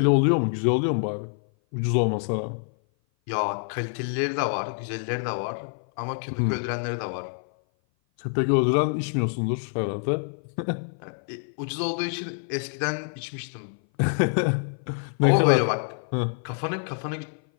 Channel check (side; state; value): right; silent; 57 dB below the other